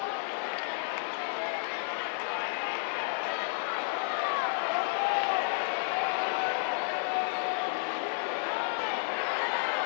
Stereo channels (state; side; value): silent; right; digital silence